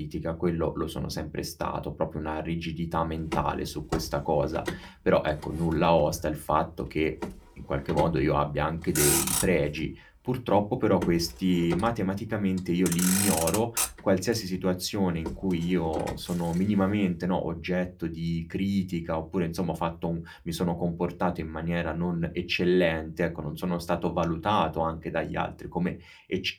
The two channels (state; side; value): identical; both; correlation 1.00